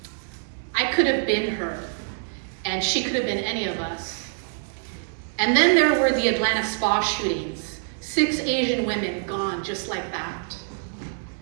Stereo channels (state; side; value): silent; left; digital silence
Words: I could have been her, and she could have been any of us. And then there were the Atlanta spa shootings. 6 Asian women gone just like that.